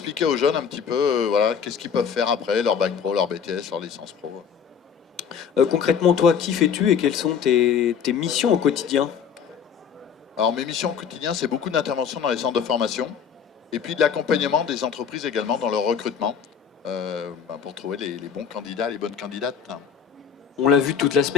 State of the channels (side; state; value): right; quieter; 7.3 dB